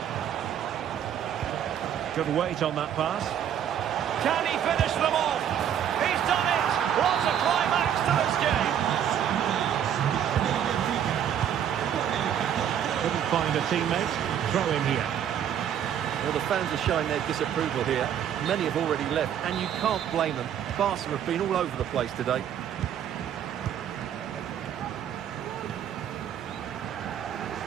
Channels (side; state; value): left; quieter; 9.5 dB